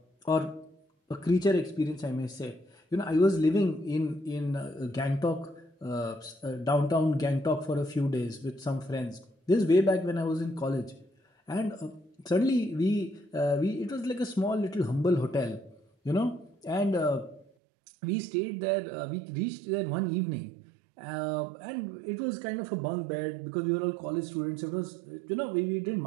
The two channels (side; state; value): left; drops out; at 17.4 s